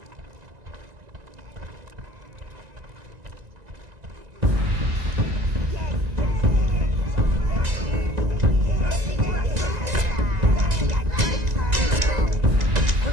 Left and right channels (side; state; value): left; late; 1.9 ms